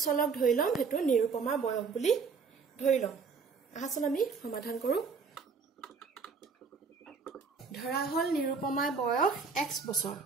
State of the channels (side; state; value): left; quieter; 5.3 dB